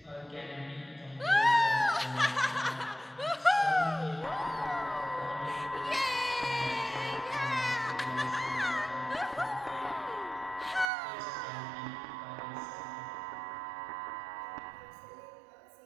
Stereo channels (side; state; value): left; drops out; at 10.9 s